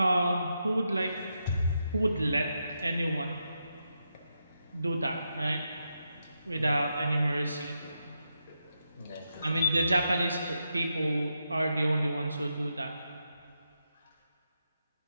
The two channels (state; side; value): inverted; both; correlation -0.84